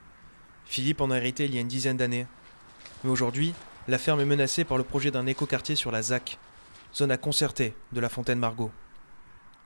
Philippe en a hérité il y a une dizaine d'années. Mais aujourd'hui, la ferme est menacée par le projet d'un écoquartier sur la ZAC, zone à concerter de la Fontaine-Margot.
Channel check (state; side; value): inverted; both; correlation -1.00